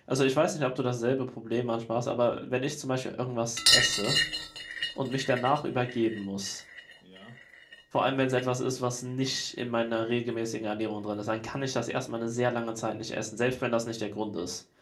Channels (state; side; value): identical; both; correlation 1.00